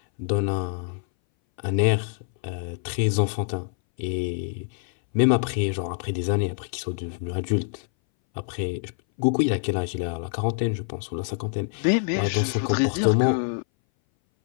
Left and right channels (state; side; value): silent; right; 59 dB below the other